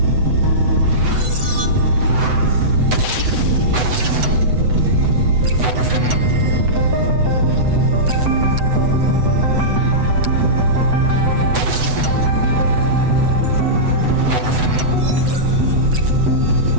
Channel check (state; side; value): late; left; 7.9 ms